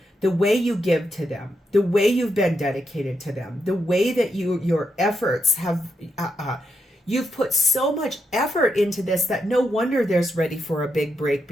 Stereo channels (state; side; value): normal; both; correlation 0.82